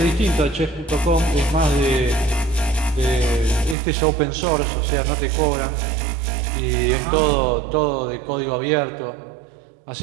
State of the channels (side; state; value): left; drops out; at 3.8 s